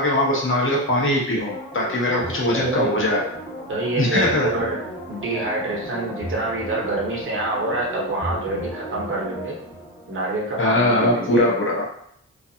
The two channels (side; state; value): both; normal; correlation 0.10